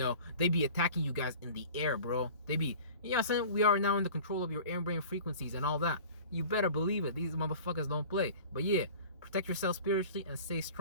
They be attacking you guys in the air, bro. They be, what I'm saying? We are now in the control of your air brain frequencies and all that. You better believe it. These motherfuckers don't play. But yeah, protect yourself spiritually and stay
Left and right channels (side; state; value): both; inverted; correlation -0.41